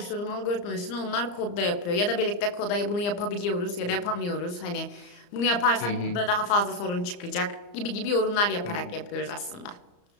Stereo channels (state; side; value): late; right; 34 ms